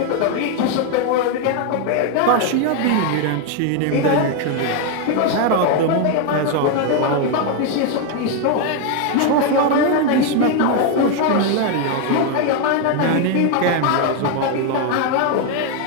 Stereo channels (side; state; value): both; different; correlation 0.01